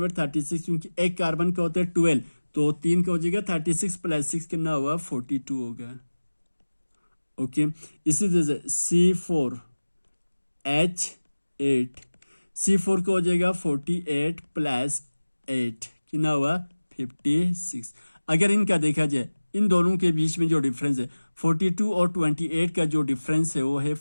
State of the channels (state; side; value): inverted; both; correlation -1.00